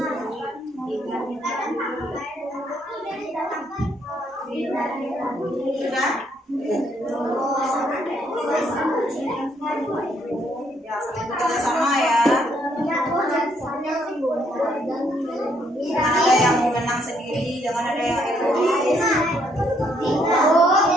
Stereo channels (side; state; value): both; normal; correlation 0.71